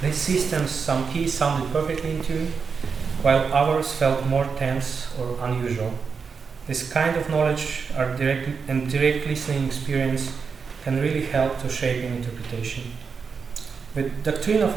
These systems, some keys sounded perfectly in tune, while others felt more tense or unusual. This kind of knowledge and direct listening experience can really help to shape an interpretation. The doctrine of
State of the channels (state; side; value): quieter; left; 5.6 dB